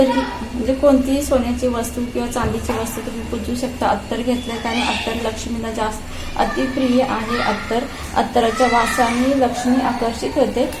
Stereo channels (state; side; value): identical; both; correlation 1.00